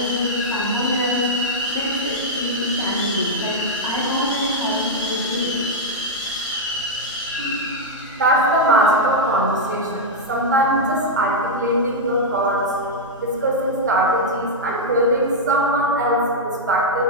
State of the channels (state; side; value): normal; both; correlation -0.03